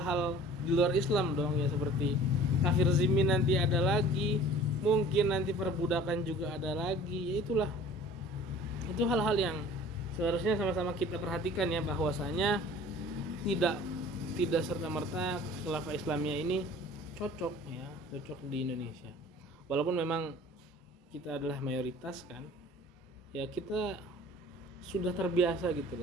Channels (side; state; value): both; normal; correlation 0.47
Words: di luar Islam dong ya, seperti kafir zimmi nanti ada lagi, mungkin nanti perbudakan juga ada lagi, ya itulah, itu hal-hal yang seharusnya sama-sama kita perhatikan ya, bahwasanya tidak serta-merta khilafah Islamiyah ini cocok di Indonesia, walaupun memang kita adalah mayoritas kan ya, kita sudah terbiasa gitu